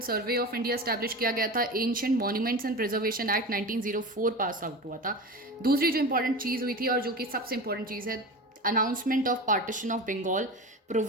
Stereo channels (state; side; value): normal; both; correlation 0.29